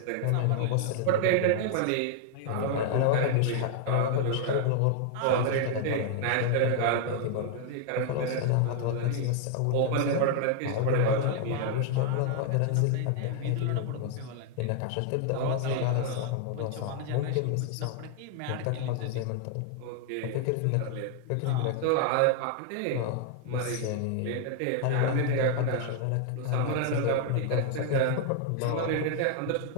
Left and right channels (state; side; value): different; both; correlation 0.00